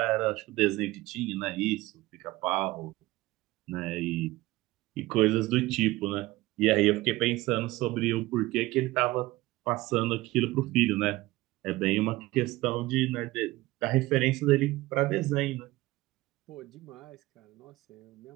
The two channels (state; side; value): quieter; left; 19.0 dB